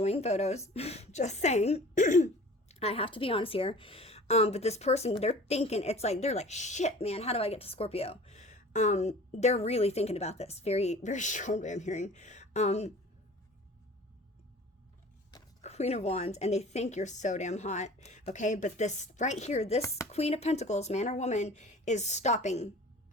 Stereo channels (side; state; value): both; normal; correlation 0.43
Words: photos. Just saying. I have to be honest here. But this person, they're thinking, they're like, shit, man, how do I get to Scorpio? They're really thinking about this. Very, very strongly, I'm hearing. Queen of Wands, and they think you're so damn hot. Okay, but this right here, this Queen of Pentacles, man or woman, is stopping.